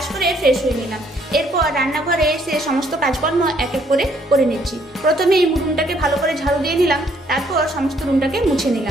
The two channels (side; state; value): both; normal; correlation 0.67